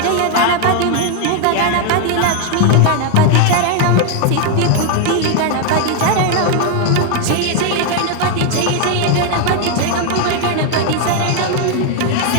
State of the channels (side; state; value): both; different; correlation 0.00